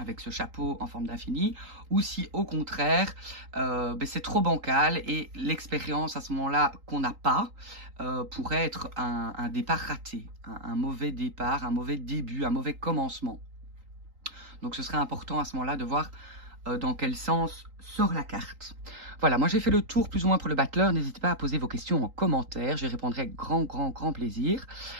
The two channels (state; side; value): late; left; 3.8 ms